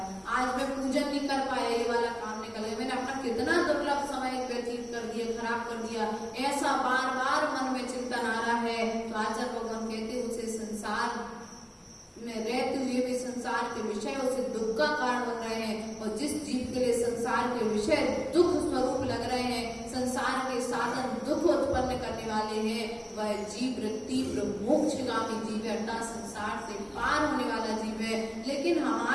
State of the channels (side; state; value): both; identical; correlation 1.00